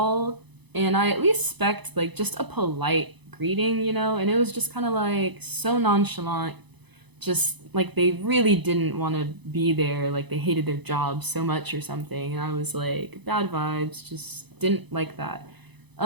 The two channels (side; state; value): left; late; 0.99 ms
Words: and I at least expect like just a polite greeting, you know? And it was just kind of like so nonchalant, just like they really didn't want to be there, like they hated their job so much or something. And I was like, bad vibes, just didn't like that.